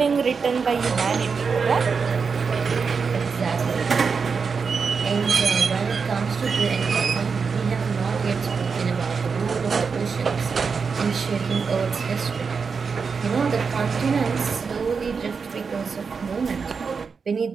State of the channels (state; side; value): quieter; left; 5.4 dB